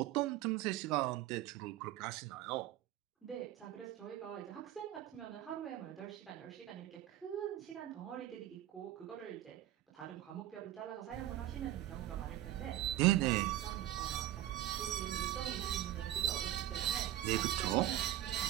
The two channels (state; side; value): quieter; left; 13.4 dB